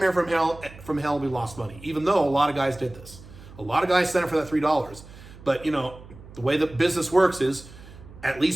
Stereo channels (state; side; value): noise; right; hum, 18 dB below the sound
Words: from hell. We lost money, even though a lot of guys did this. A lot of guys signed up for that $3. But the way the business works is at